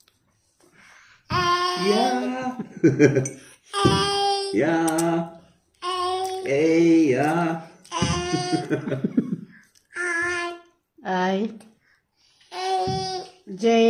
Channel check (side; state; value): both; identical; correlation 1.00